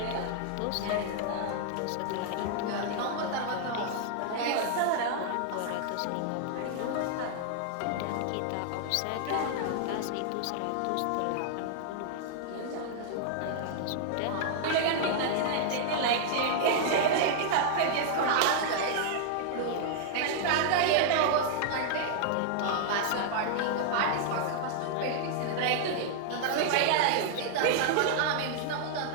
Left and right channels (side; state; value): both; different; correlation -0.01